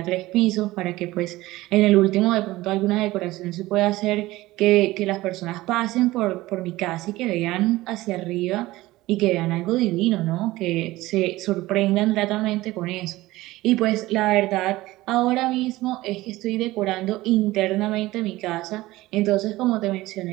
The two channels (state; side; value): quieter; left; 18.1 dB